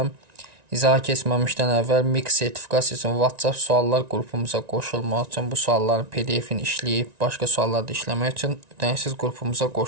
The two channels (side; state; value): left; late; 1.9 ms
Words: İzaha keçməmişdən əvvəl MİQ sertifikasiyasının WhatsApp suallar qrupumuza qoşulmaq üçün bu sualların PDF-ini işləyib başqa sualları da işləmək üçün ödənişsiz qrupumuza